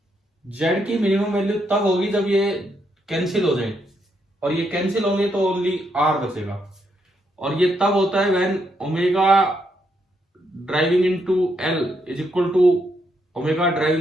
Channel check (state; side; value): normal; both; correlation 0.77